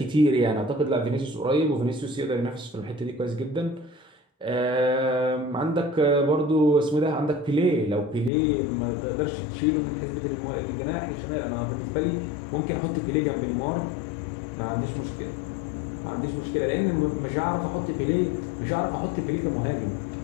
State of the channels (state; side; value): drops out; right; at 8.3 s